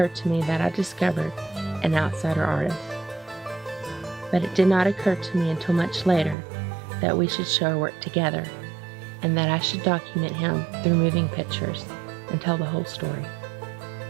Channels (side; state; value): left; drops out; at 6.4 s